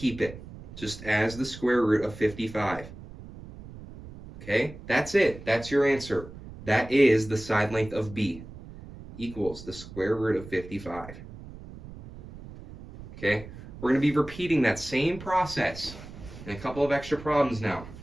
it just as the square root of 55. Okay, that's it. That's your answer. That is the side length of b equals the square root of 55. Okay, we're going to be repeating that same process in a couple of extra problems now.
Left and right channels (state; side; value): noise; right; rumble, 15 dB below the sound